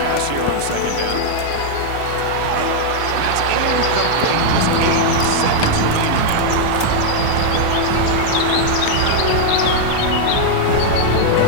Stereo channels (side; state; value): both; different; correlation 0.00